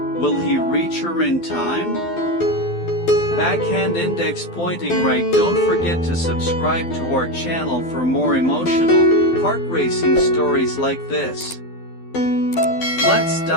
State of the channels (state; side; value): late; right; 12 ms